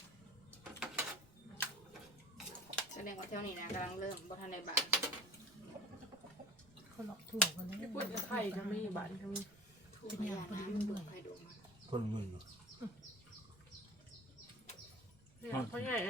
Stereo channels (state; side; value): noise; right; rumble, 25 dB below the sound